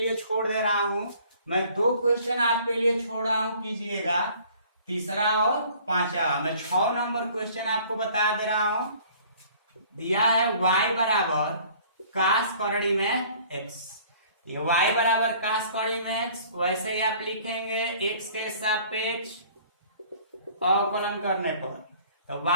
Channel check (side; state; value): both; inverted; correlation -0.53